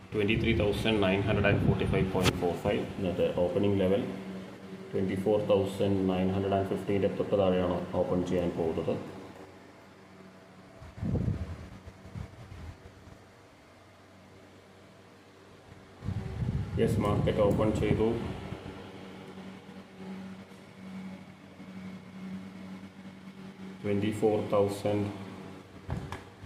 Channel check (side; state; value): both; identical; correlation 1.00